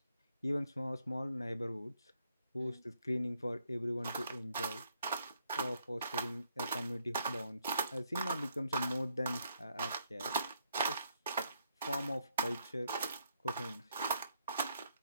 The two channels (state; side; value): inverted; both; correlation -0.73